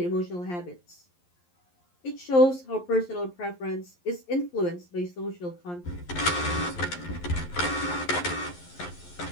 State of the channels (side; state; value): right; late; 11 ms